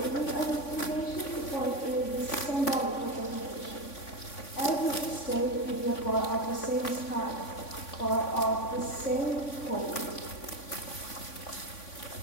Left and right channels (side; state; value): right; late; 3.5 ms